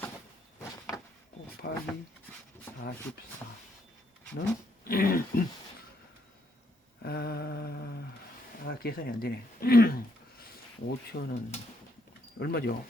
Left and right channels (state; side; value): normal; both; correlation 0.73